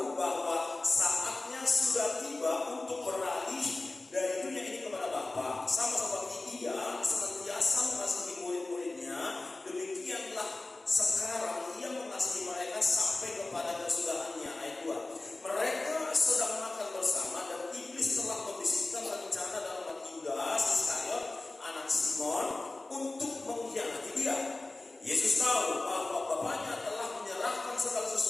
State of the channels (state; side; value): quieter; right; 3.0 dB